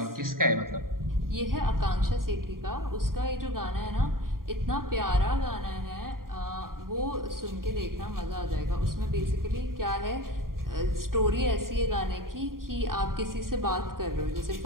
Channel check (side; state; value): left; late; 0.91 ms